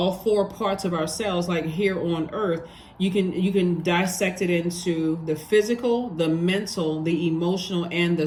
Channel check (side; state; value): both; identical; correlation 1.00